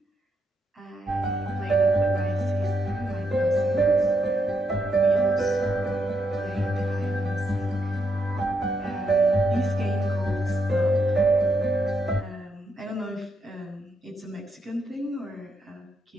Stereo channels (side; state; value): both; normal; correlation 0.79